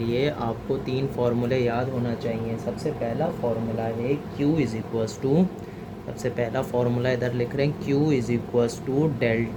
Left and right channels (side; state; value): both; identical; correlation 1.00